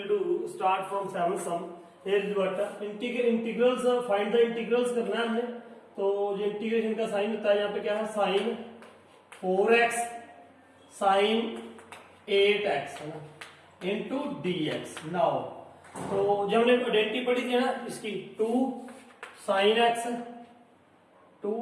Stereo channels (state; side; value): identical; both; correlation 1.00